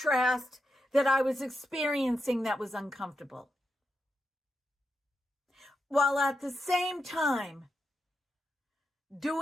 that I was experiencing that was uncomfortable, while at the same time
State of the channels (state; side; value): normal; both; correlation 0.86